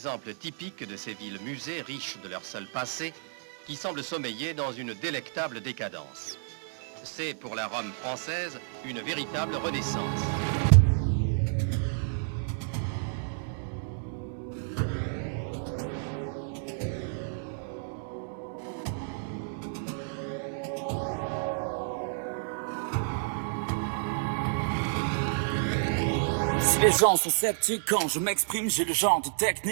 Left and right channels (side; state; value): left; silent; digital silence